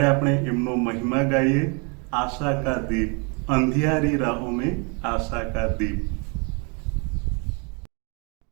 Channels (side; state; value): left; quieter; 33.8 dB